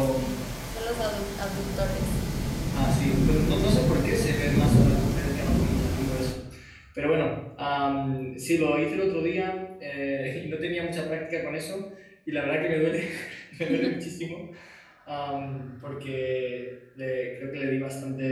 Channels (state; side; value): identical; both; correlation 1.00